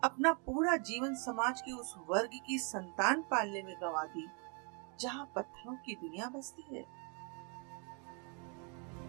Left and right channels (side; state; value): left; quieter; 36.8 dB